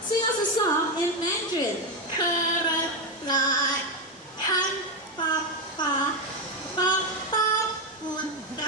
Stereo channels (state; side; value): normal; both; correlation 0.08